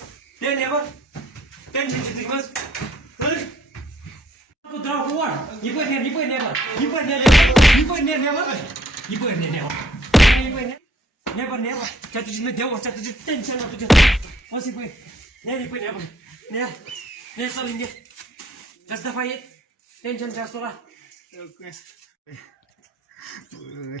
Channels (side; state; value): both; normal; correlation 0.63